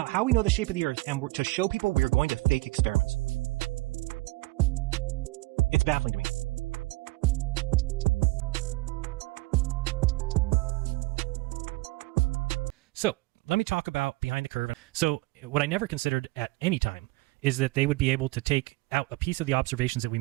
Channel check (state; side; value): quieter; left; 21.6 dB